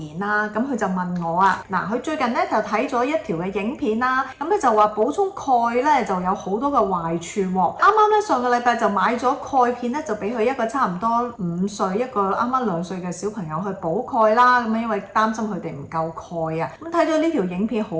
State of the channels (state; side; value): identical; both; correlation 1.00